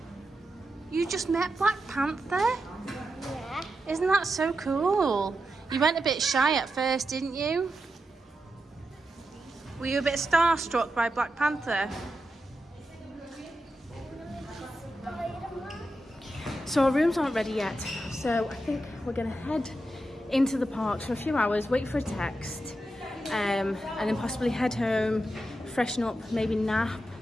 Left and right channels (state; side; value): normal; both; correlation 0.88